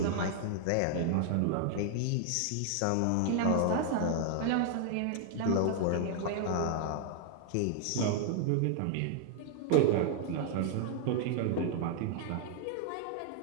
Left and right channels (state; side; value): different; both; correlation 0.00